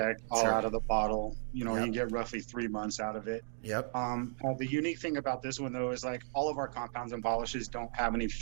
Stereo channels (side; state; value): left; silent; digital silence